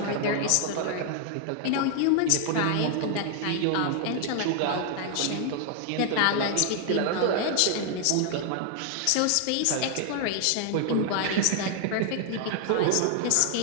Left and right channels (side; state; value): both; different; correlation 0.00